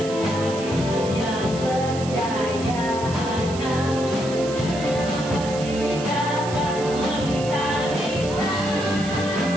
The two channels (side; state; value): right; noise; hiss, 13 dB below the sound